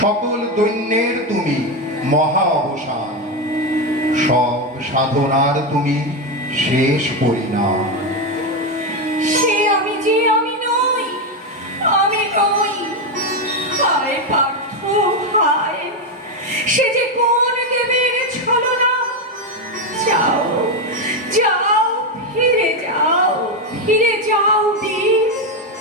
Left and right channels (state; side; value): normal; both; correlation 0.09